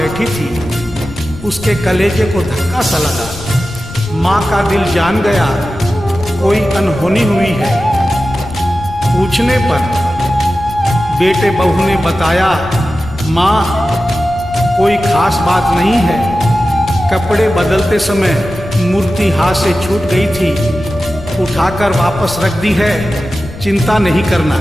थी, उसके कलेजे को धक्का सा लगा। माँ का दिल जान गया कोई अनहोनी हुई है। पूछने पर बेटे बहू ने बताया, माँ कोई खास बात नहीं है, कपड़े बदलते समय मूर्ति हाथ से छूट गई थी, उठाकर वापस रख दी है, चिंता नहीं करना।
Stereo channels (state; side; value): noise; left; rumble, 15 dB below the sound